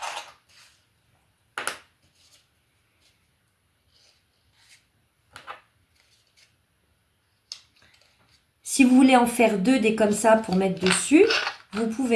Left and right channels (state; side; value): identical; both; correlation 1.00